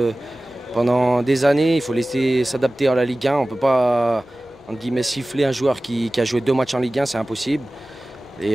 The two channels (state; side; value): normal; both; correlation 0.97